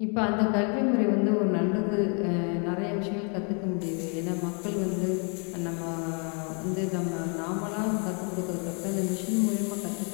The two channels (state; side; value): quieter; right; 38.2 dB